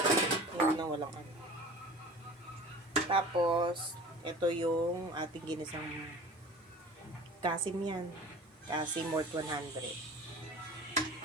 Yun na walang ano. Tapos, ito yung ating ginisang kasim yan. Kasim worth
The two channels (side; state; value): both; normal; correlation 0.40